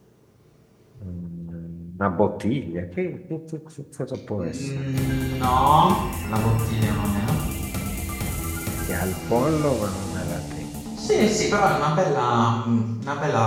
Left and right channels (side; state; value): both; identical; correlation 1.00